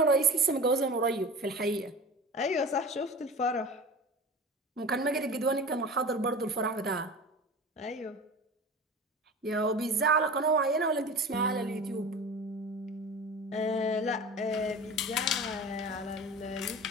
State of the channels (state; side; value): normal; both; correlation 0.35